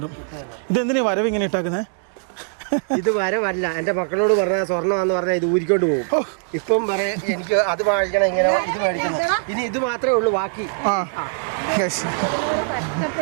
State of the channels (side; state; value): left; silent; digital silence